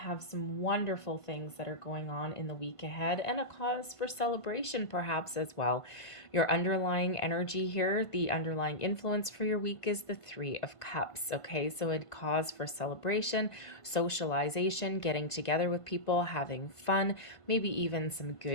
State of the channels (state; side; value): late; right; 1.5 ms